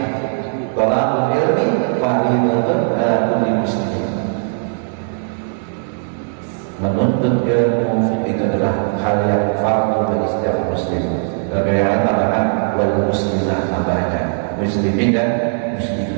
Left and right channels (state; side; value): silent; left; 67 dB below the other